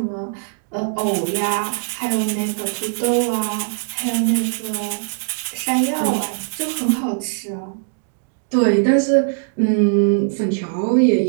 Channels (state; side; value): silent; left; digital silence